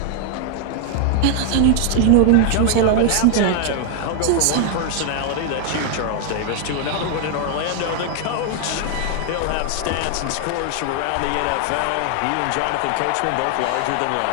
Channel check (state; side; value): different; both; correlation 0.00